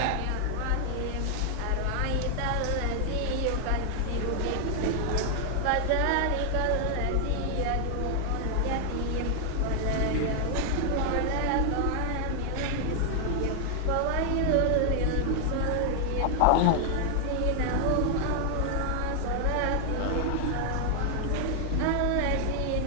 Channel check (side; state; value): both; different; correlation 0.00